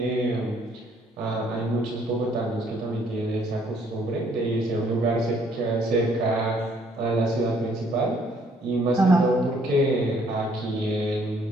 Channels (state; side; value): normal; both; correlation 0.64